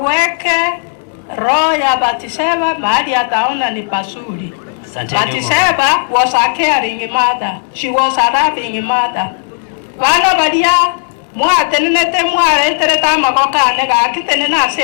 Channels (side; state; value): right; silent; 65 dB below the other